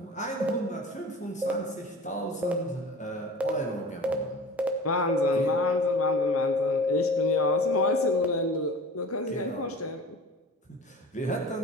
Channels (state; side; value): normal; both; correlation 0.38